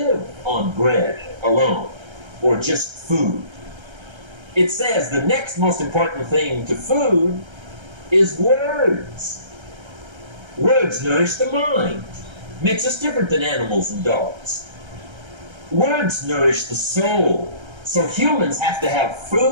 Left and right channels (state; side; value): late; left; 1.3 ms